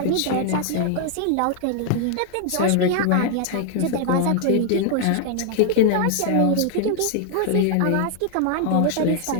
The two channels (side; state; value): both; different; correlation 0.00